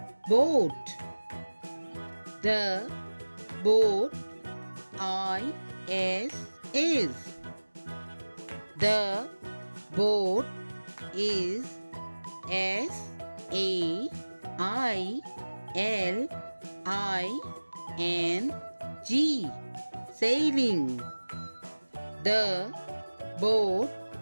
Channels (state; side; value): inverted; both; correlation -1.00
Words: boat. The boat is the boat is S-A-I-L-I-N-G sailing. The boat